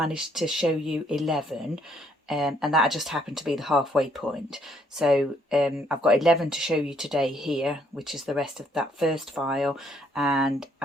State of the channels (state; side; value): normal; both; correlation 0.68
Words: to show you 11 and that just happened to be the halfway point. So I've got 11 to show you today here, which is the rest of that first file, and